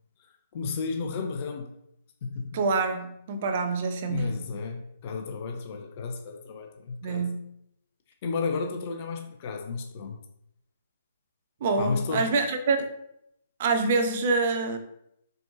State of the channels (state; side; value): inverted; both; correlation -0.59